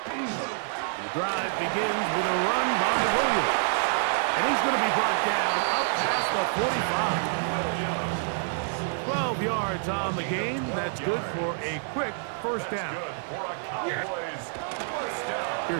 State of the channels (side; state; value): left; silent; digital silence